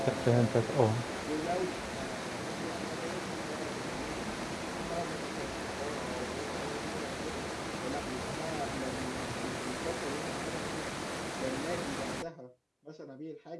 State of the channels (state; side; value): identical; both; correlation 1.00